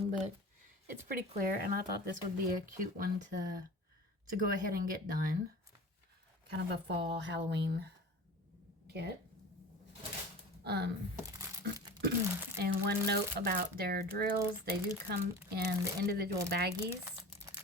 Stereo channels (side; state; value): both; normal; correlation 0.36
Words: but it's pretty clear, and I thought this would be a cute one to go ahead and get done. Kind of a fall Halloween kit. And one note about their drills, they do come in the individual baggies.